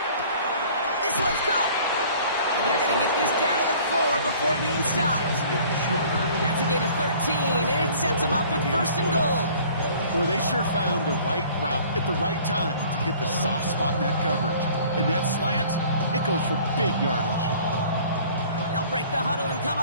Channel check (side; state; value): both; inverted; correlation -0.51